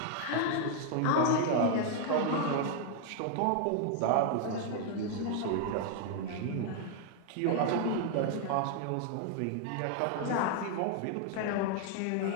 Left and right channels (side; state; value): both; different; correlation 0.00